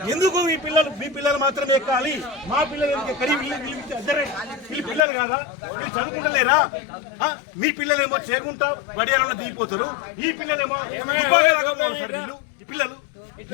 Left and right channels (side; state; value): right; drops out; at 5.1 s